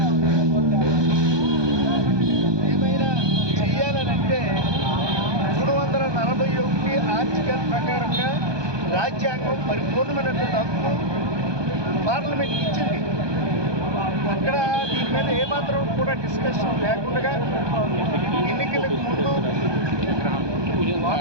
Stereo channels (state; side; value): late; left; 1.2 ms